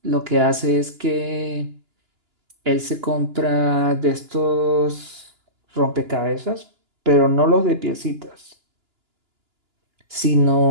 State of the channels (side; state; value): left; late; 2.9 ms